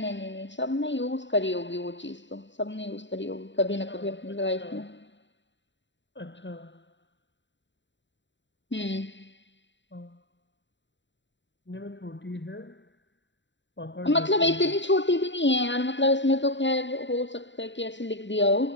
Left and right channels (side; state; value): right; late; 0.53 ms